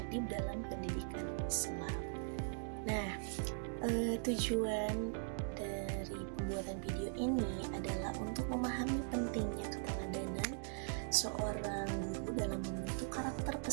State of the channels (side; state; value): left; silent; digital silence